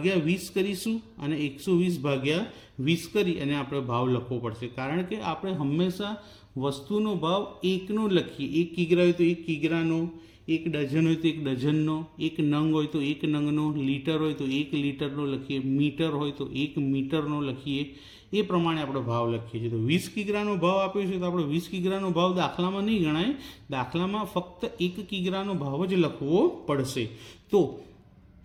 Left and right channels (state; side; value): identical; both; correlation 1.00